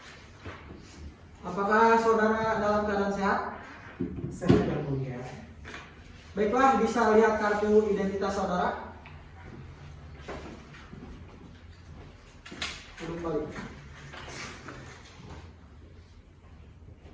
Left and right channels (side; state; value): both; identical; correlation 1.00